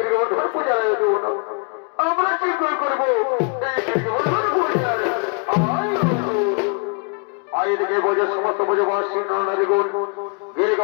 পূজার আয়োজন। আমরা শীঘ্র করবো এই গিরিগোবর্ধন পূজার আয়োজনে বোঝে সমস্ত বোঝবাসী নারীগণ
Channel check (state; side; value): quieter; right; 36.8 dB